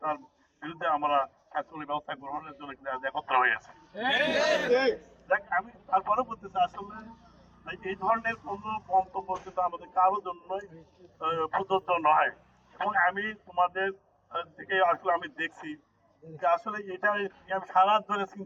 তার বিরুদ্ধে আমরা শাসনের ব্যবস্থা গ্রহণের জন্য একত্র হয়েছে। দেখ আমি তারপরে বলতেছি আসলে এই ধরনের কোনো মন্তব্য কিন্তু আমাদের কারোর জন্যই প্রযোজ্য নয় এবং আমি তোমাদের থেকে আসলে আমি দেখছি যে আসলে এটা আমি সারা ধরে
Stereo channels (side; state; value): both; identical; correlation 1.00